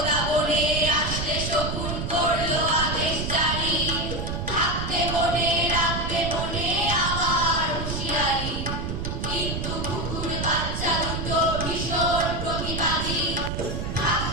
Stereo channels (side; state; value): right; noise; rumble, 3 dB below the sound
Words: বনে আসলে শকুন করলো আদেশ জারি, থাকতে মনে রাখবে মনে আমার হুঁশিয়ারি। কিন্তু কুকুর বাচ্চা দুটো ভীষণ প্রতিবাদী,